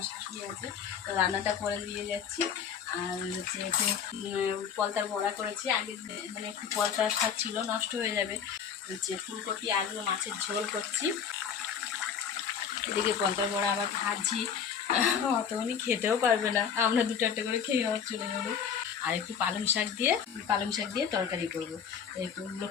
শাশুড়ি আছে, তো রান্নাটা করে দিয়ে যাচ্ছি। আর হচ্ছে একটু পলতার বড়া করেছি আগে, মানে একটু পলতার স্বাদ ছিল, নষ্ট হয়ে যাবে। হচ্ছে ফুলকপি আলু মাছের ঝোল করছি, এদিকে পলতার বড়া আবার ভাজি। অতখানি খেতেও পারবে না, আমরা 2-4টে করে খেয়ে আবার চলে যাবো। আর একটু পালং শাক দিয়ে তরকারি করবো। এগুলো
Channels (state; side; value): quieter; right; 7.5 dB